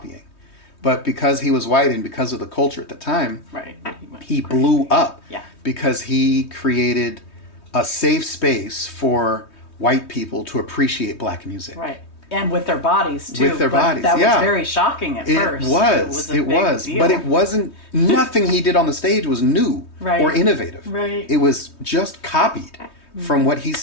But because he was white and because of the culture at the time, he blew up because he created a safe space for white people to appreciate black music. Right. And with their bodies, too. With their bodies, that was very shocking at first. It was. But it wasn't, nothing he did on the stage was new or innovative. Right. It was just copied from what he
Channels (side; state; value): right; late; 3.2 ms